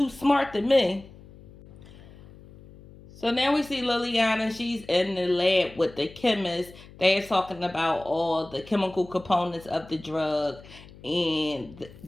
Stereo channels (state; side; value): noise; left; hum, 20 dB below the sound